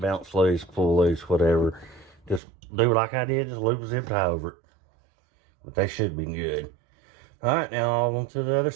loose, pull loose, whatever. Just do like I did, just loop a zip tie over it. But they should be good. All right, now on to the other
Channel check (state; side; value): drops out; left; at 2.4 s